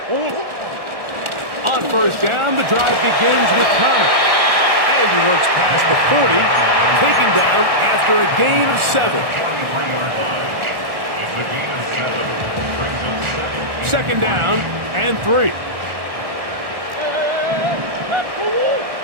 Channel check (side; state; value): left; late; 1.4 ms